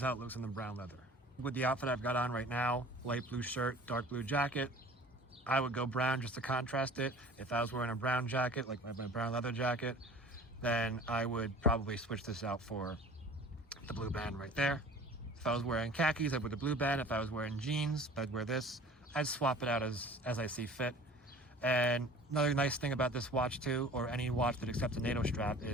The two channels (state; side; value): normal; both; correlation 0.44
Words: how it looks in the brown leather. With the outfit I've got on right now, light blue shirt, dark blue jacket, I would go brown just to contrast it. If I was wearing a brown jacket, like my brown leather jacket, then I would probably switch this out for the blue band right there. If I was wearing khakis, I'd wear the blue band. If I was wearing jeans, I'd wear this. I'd swap it out as I see fit. And another nice thing about this watch too, or any watch that accepts a NATO strap,